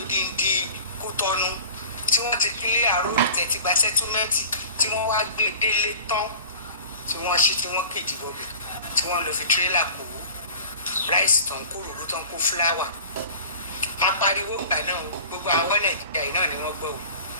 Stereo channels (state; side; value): inverted; both; correlation -0.41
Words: Kútọ́nù tí wọ́n ti kílé àròrò tẹ̀tí gba sẹ́túmẹ́ǹtì tí wọ́n wá gbé délé tán tí wọ́n ṣí tí wọ́n kéjì bọ̀bẹ̀ tí wọ́n lọ fi tírélà kó ráìsì tán kó ròró tán kó fúláwà apariwo ìgbà náà gbogbo àwọn Nàìjíríà yìí náà ni wọ́n gbọ́ o